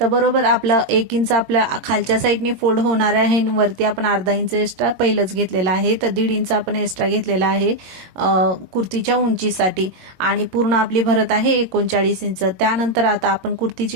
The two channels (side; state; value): left; late; 21 ms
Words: बरोबर आपलं 1 इंच आपल्या खालच्या साईडने फोल्ड होणार आहे, वरती आपण अर्धा इंच एक्स्ट्रा पहिलंच घेतलेला आहे, तर 1.5 इंच आपण एक्स्ट्रा घेतलेला आहे कुर्तीच्या उंचीसाठी आणि पूर्ण आपली भरत आहे 39 इंच। त्यानंतर आता आपण कुर्तीची